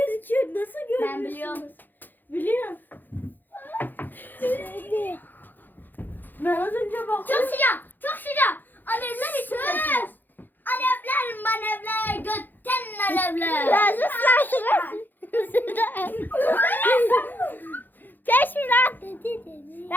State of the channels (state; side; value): late; right; 0.088 ms